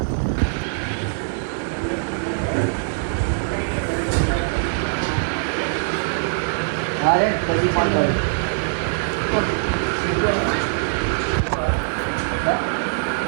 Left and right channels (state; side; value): silent; left; digital silence